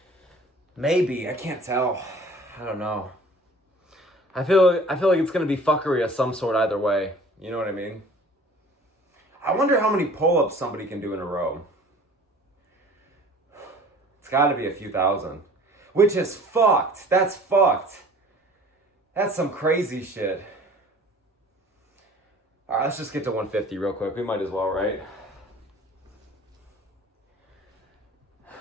Maybe. I can't tell. I don't know. I feel like it's going to be fuckery of some sort either way. You know what I mean? I wonder how many pull-ups somebody can do in a row. It's got to be a few thousand. Which is fucked. That's fucked. That's some crazy shit. All right, let's just get to 150 real quick. We might as well, right?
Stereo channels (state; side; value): normal; both; correlation 0.47